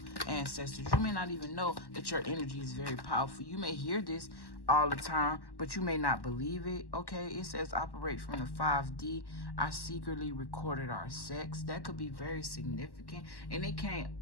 ancestors. You may not even know that your energy is very powerful. You may hear this all the time, but you may not believe it. Okay, it says operate from the 5D. I secretly recorded our sex. That could be very significant. And it came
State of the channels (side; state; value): right; late; 1.1 ms